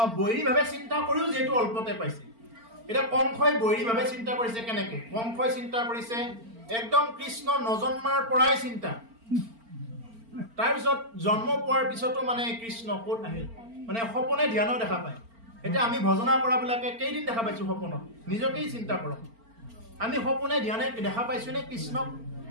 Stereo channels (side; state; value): left; late; 4.4 ms